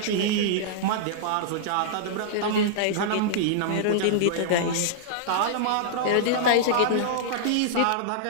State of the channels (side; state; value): both; different; correlation -0.02